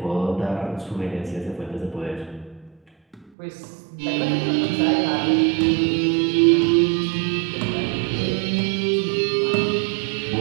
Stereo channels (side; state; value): left; drops out; at 3.3 s